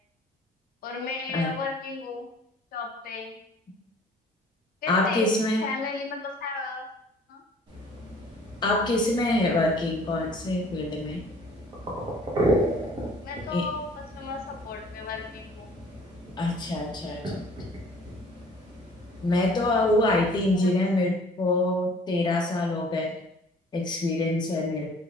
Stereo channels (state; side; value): normal; both; correlation 0.53